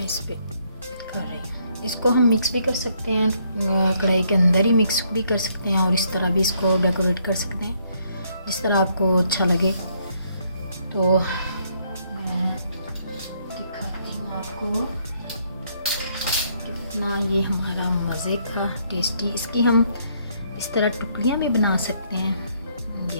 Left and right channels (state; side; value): inverted; both; correlation -0.70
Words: इस पे कर रही हूँ। इसको हम मिक्स भी कर सकते हैं, कढ़ाई के अंदर ही मिक्स भी कर सकते हैं और इस तरह भी इसको डेकोरेट कर सकते हैं, जिस तरह आपको अच्छा लगे। तो मैं दिखाती हूँ आपको कितना ये हमारा मज़े का टेस्टी। इसकी हम इस तरह टुकड़ियाँ भी बना सकते हैं, ये